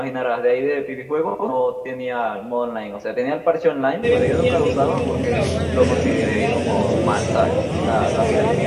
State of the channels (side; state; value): both; identical; correlation 1.00